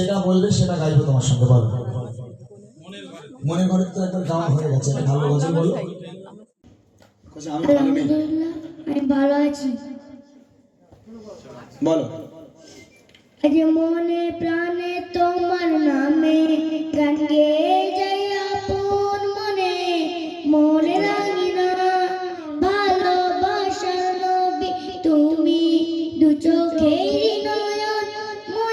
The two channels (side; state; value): both; identical; correlation 1.00